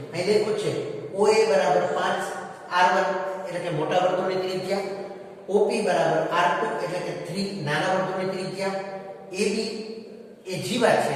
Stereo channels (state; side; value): identical; both; correlation 1.00